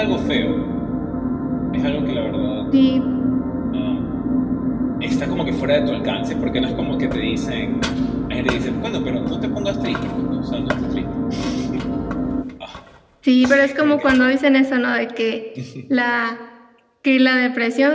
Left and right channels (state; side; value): identical; both; correlation 1.00